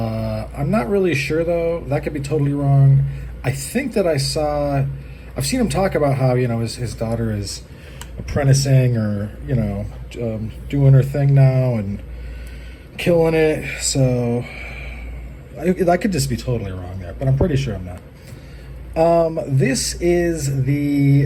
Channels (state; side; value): identical; both; correlation 1.00